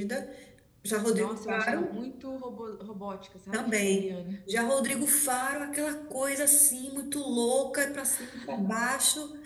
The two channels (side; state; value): both; identical; correlation 1.00